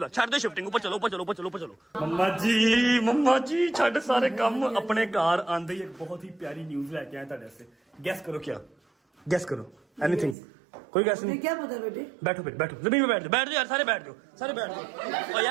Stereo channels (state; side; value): drops out; left; at 10.4 s